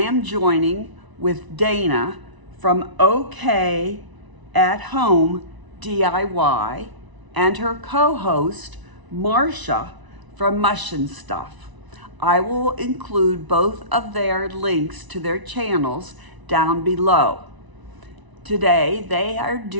joining with Dana from OK at Home DIY and her co-host Marcia from Mush and Stuff. I will include both of their links to their channels down below. Today they are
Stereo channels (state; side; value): late; left; 1.0 ms